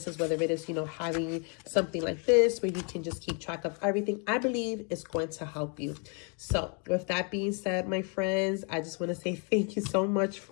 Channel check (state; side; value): quieter; right; 37.3 dB